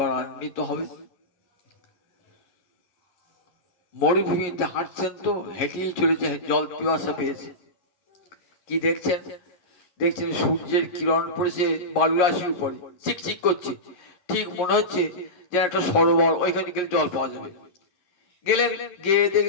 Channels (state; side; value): late; right; 11 ms